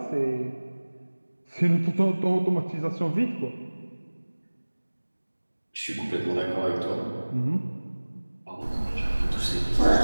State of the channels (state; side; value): inverted; both; correlation -1.00